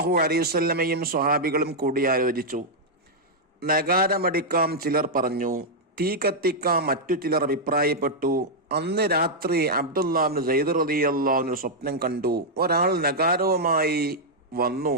അലൈഹി വസല്ലമയും സ്വഹാബികളും കൂടിയാലോചിച്ചു. നഗാരമടിക്കാം ചിലർ പറഞ്ഞു, തീ കത്തിക്കാം മറ്റു ചിലർ അഭിപ്രായപ്പെട്ടു. അന്ന് രാത്രി അബ്ദുല്ലാഹിബ്നു സൈദ് റളിയല്ലാഹു സ്വപ്നം കണ്ടു. ഒരാൾ നഗാരവുമായി വന്നു.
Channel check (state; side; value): normal; both; correlation -0.04